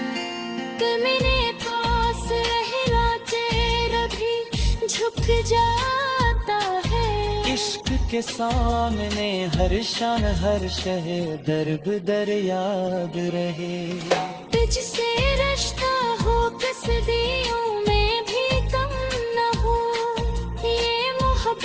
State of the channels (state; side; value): identical; both; correlation 1.00